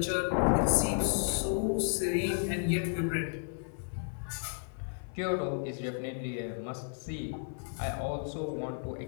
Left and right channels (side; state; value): right; silent; 56 dB below the other